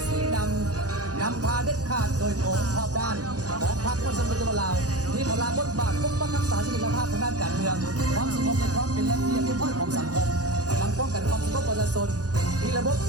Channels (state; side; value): late; left; 0.67 ms